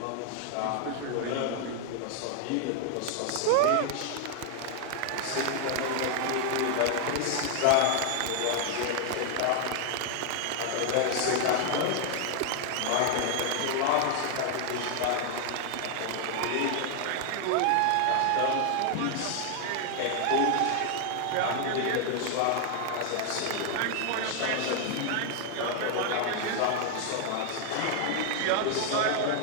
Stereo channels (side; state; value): both; different; correlation 0.00